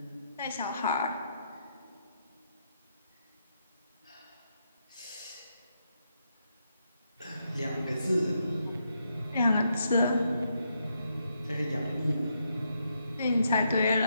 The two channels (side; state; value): both; inverted; correlation -0.79